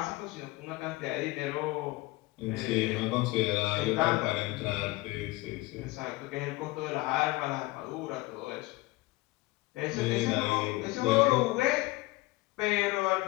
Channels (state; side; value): quieter; right; 20.6 dB